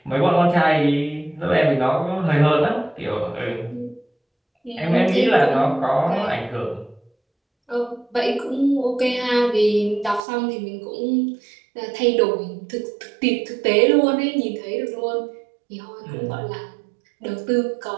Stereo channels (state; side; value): drops out; left; at 10.2 s